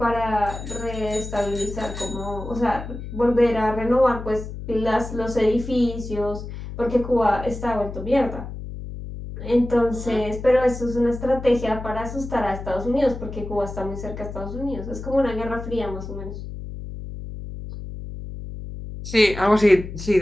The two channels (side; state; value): left; noise; hum, 9 dB below the sound